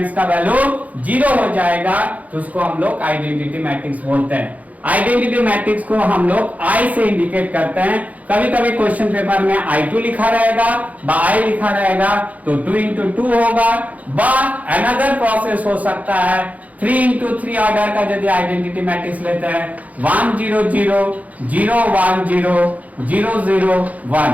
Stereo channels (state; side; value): late; left; 0.074 ms